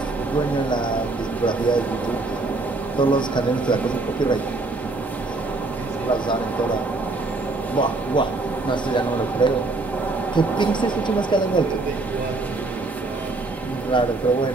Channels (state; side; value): quieter; left; 3.3 dB